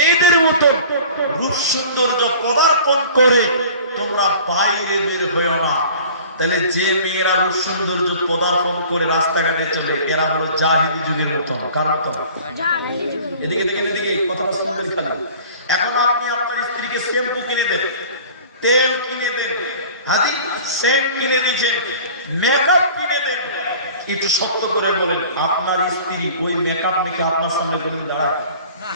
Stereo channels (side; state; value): both; inverted; correlation -0.45